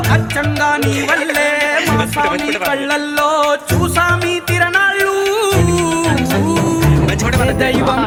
అచ్చంగా నీ వల్లే మా స్వామి కళ్ళల్లో చూసామి తిరణాళ్ళు. దైవం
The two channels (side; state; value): both; identical; correlation 1.00